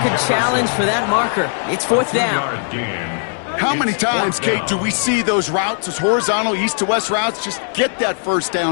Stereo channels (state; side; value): silent; right; 67 dB below the other